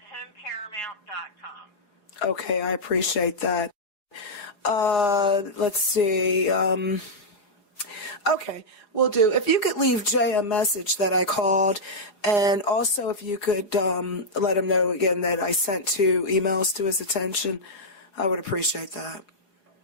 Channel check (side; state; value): right; late; 4.8 ms